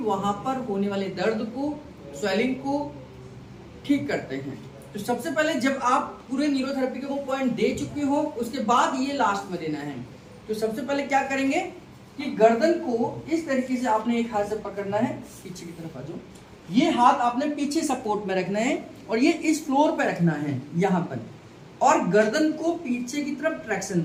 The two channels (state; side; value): identical; both; correlation 1.00